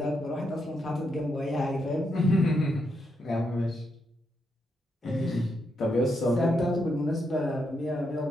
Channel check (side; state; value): both; normal; correlation 0.81